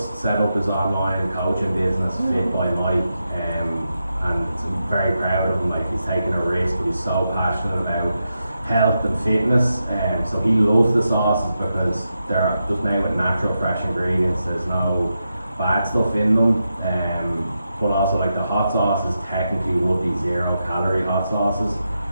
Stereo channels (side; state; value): both; inverted; correlation -0.87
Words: set up his online coaching business, Fit by Mike, and I'm very proud of him. Like he's taking a risk, but he's so passionate about health and fitness, and so he loves the sauces because they're just made with natural, fresh ingredients. There's no bad stuff in them, but also like the hot sauces technically would be 0-calorie hot sauces,